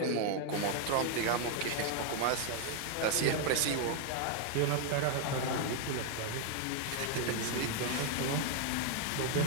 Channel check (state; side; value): different; both; correlation 0.00